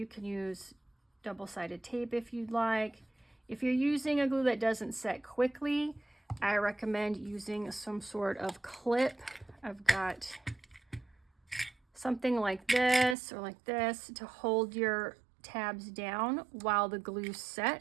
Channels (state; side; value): drops out; left; at 13.2 s